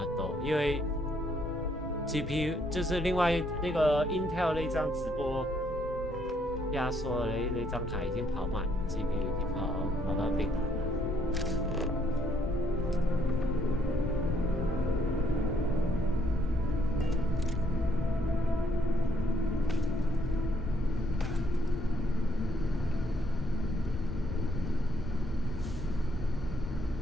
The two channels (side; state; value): both; normal; correlation 0.70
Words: 多，因为 GPU 就是另外那个 Intel 那张直播压缩的那张卡已经跑满 ，GPU 已经跑到顶了。